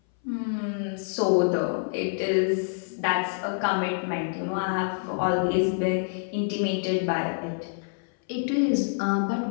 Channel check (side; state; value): right; silent; 59 dB below the other